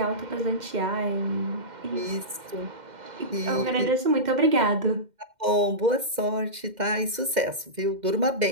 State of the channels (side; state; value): left; late; 2.0 ms